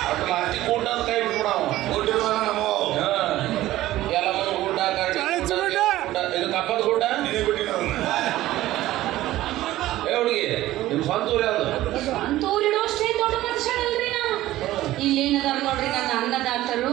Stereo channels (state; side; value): quieter; left; 15.5 dB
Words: ಅಟ್ ಲಾಸ್ಟಿಗೆ ಊಟ ಅಂತ ಕೈ ಬಿಟ್ಬಿಡ ಗೋಟಿರುವ ನಮ್ಮ ಎಲ್ಲ ಮಂದಿ ಊಟ ಇದು ಕಪ್ಪದ ಊಟ ನೀನೇ ಬಿಟ್ಟಿನ ಹುಡುಗಿ ನಿಮ್ ಸ್ವಂತ ಊರು ಯಾವ್ದು ಅಂತೂರಿಡೋಷ್ಟೇ ದೊಡ್ಡ ಮನುಷ್ಯನಲ್ರಿ ನಾ ಇಲ್ಲೇನದಾರ ನೋಡ್ರಿ ನನ್ನ